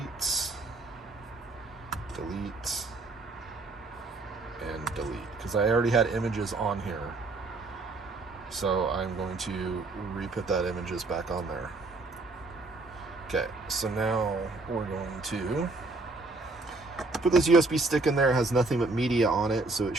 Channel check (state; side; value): quieter; left; 3.3 dB